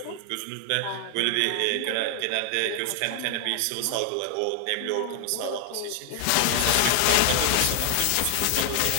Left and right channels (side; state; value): both; different; correlation 0.00